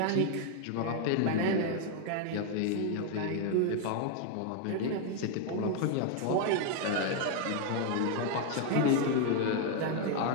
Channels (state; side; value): different; both; correlation 0.00